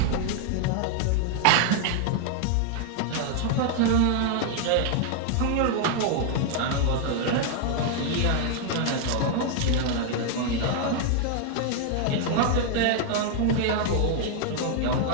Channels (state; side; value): different; both; correlation 0.00